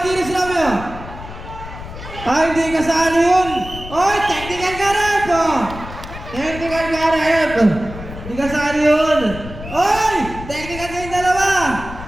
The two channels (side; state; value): left; noise; rumble, 12 dB below the sound